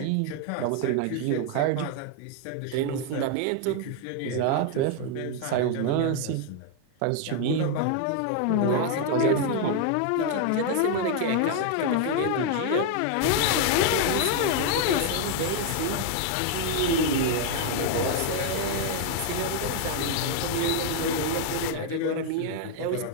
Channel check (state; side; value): different; both; correlation 0.00